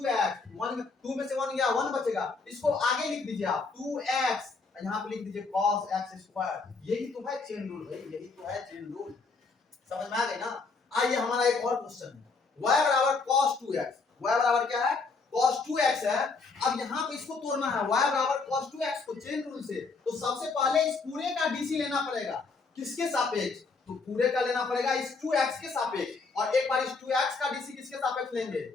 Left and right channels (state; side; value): quieter; right; 4.3 dB